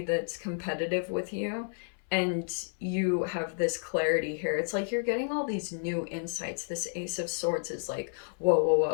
competitive with you, and you have this clarity here. It's like you're getting all these new insights. This Ace of Swords is like, whoa, whoa,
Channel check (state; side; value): silent; right; 57 dB below the other